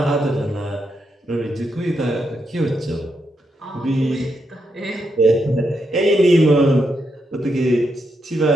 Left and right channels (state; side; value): normal; both; correlation 0.82